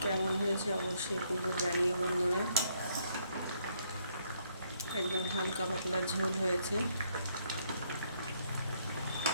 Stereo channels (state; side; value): inverted; both; correlation -0.70